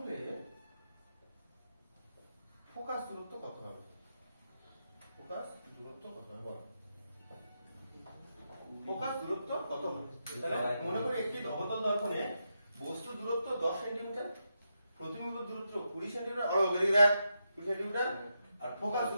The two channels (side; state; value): both; inverted; correlation -0.85